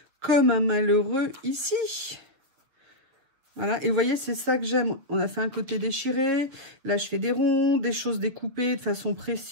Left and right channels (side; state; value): left; late; 7.4 ms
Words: comme un malheureux ici. Voilà, et vous voyez, c'est ça que j'aime. On a fait un côté déchiré. Là, je fais des ronds, des choses découpées de façon